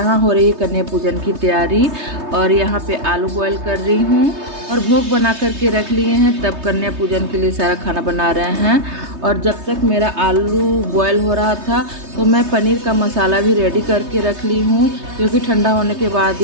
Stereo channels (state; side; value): late; left; 3.2 ms